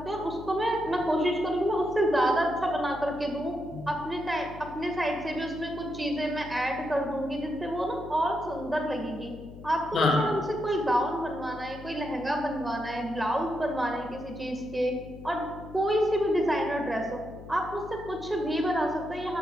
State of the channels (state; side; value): noise; left; hum, 15 dB below the sound